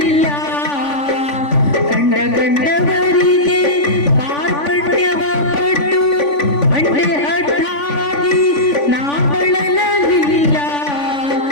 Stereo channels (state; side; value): late; right; 3.5 ms